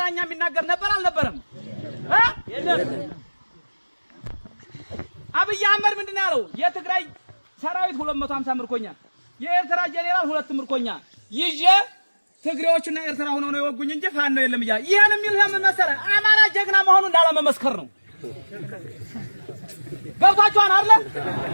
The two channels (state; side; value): inverted; both; correlation -1.00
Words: የሚናገር ነበር አልነበረም? አብይ አህመድ ምንድነው ያለው? የትግራይ ሰራዊት 250 ምርኮኛ፣ የኤርትራ ጄኔራል 2 ምርኮኛ ይዤ ትግሬዎችና ኤርትራ ሆነው ነው የወጉኝ እንጂ ፋኖ የለም እያለ ይሄን የሚል ለምን መሰለህ? አማራ ጀግና መሆኑን ላለመመስከር ነው። ገብታችኋል አይደለ?